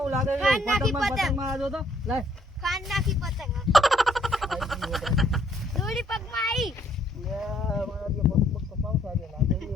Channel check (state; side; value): normal; both; correlation 0.66